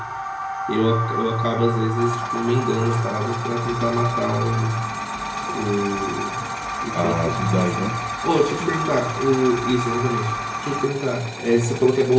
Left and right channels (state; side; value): identical; both; correlation 1.00